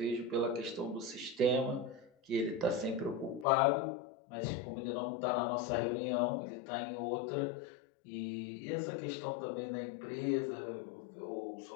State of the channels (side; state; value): right; drops out; at 3.5 s